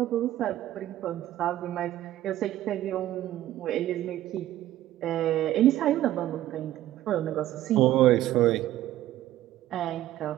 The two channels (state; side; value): quieter; left; 13.8 dB